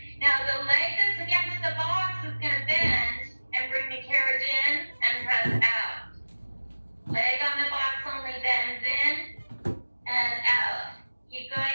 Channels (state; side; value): inverted; both; correlation -1.00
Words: Now the leg that's against the box is going to bend and bring the carriage in and press out. Leg on the box only bends in and out. Keep